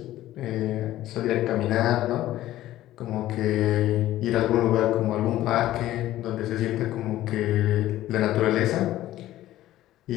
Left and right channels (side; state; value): right; quieter; 14.5 dB